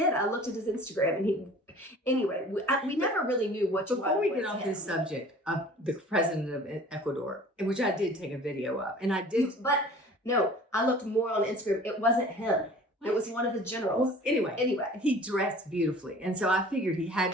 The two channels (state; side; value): normal; both; correlation 0.46